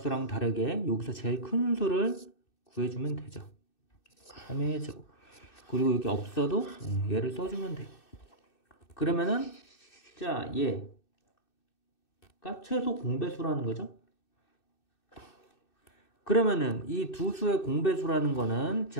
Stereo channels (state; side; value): late; right; 2.6 ms